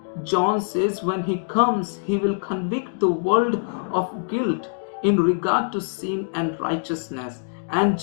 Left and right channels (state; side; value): silent; right; digital silence